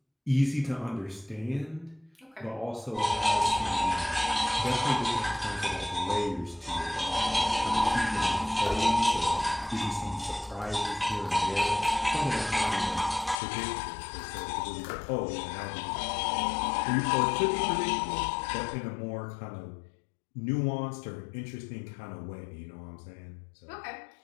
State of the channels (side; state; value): right; drops out; at 13.4 s